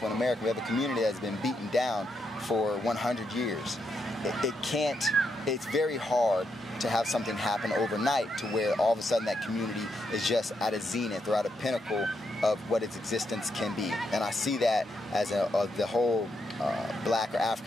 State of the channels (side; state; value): both; normal; correlation 0.81